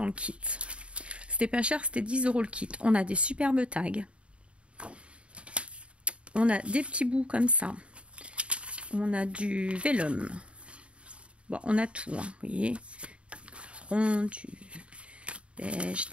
le kit. C'était pas cher, c'était 10 € le kit. On a des superbes tags. On a des petits bouts comme ça. On a du vélum. Bon, on a tout, hein, vous voyez. Rond, du beige,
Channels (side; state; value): left; late; 0.059 ms